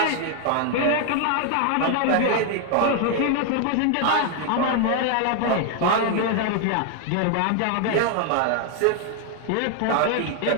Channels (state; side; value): different; both; correlation 0.00